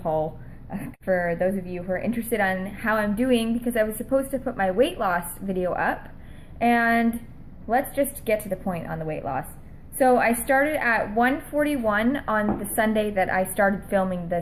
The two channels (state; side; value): identical; both; correlation 1.00